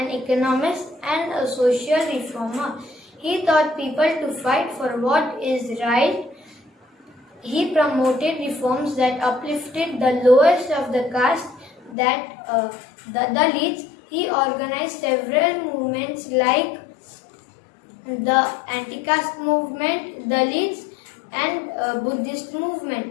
economist, and a social reformer. He taught people to fight for what is right. He promoted reforms that uplifted the lowest of the caste, the Dalits. He organized several movements like the anti-caste movement, Dalits, and Buddhist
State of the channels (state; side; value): drops out; right; at 12.0 s